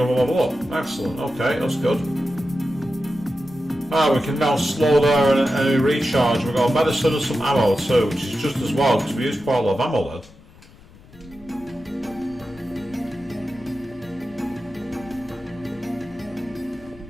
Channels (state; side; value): noise; left; rumble, 23 dB below the sound